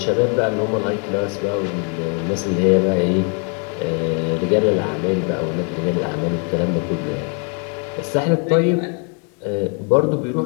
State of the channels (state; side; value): quieter; right; 38.6 dB